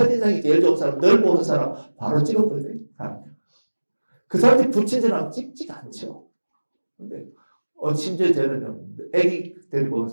제일 좋은 사람, 늘 보는 사람 바로 찍어버려요. 그 사람들이 불친절하면 찍지가 않죠. 근데 심지어 저는 애기 데리고 온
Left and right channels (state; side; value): inverted; both; correlation -1.00